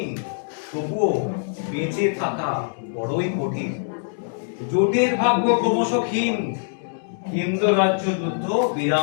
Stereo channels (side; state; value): right; silent; digital silence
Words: তবুও বেঁচে থাকা বড়ই কঠিন, জোটের ভাগ্য ক্রমশ ক্ষীণ, কেন্দ্র রাজ্য যুদ্ধ